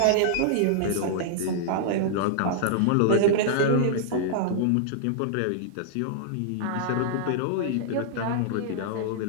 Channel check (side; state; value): both; different; correlation -0.01